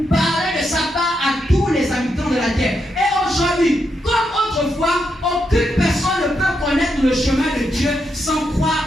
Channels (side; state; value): both; normal; correlation 0.82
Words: parler de sa part à tous les habitants de la terre. Et aujourd'hui, comme autrefois, aucune personne ne peut connaître le chemin de Dieu sans